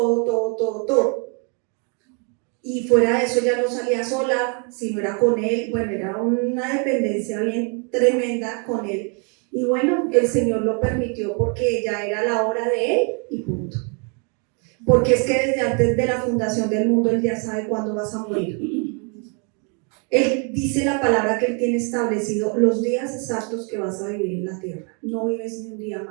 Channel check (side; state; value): left; quieter; 36.1 dB